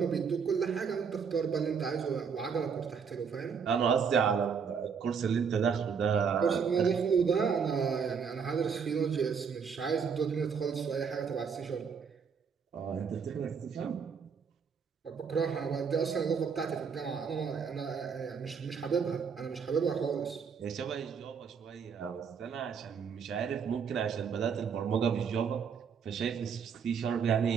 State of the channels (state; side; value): quieter; left; 6.4 dB